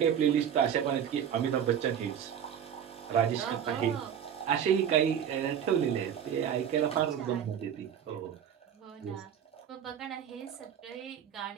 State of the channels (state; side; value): quieter; left; 8.8 dB